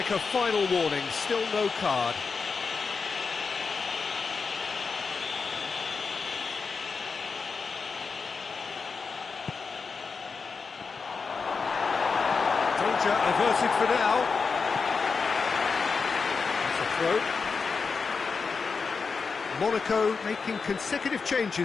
a final warning, still no card. Danger averted for now. That's a throw. Monaco making consecutive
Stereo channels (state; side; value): quieter; right; 5.0 dB